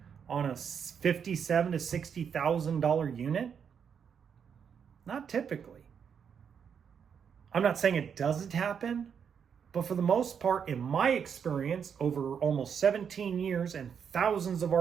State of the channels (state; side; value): quieter; left; 7.3 dB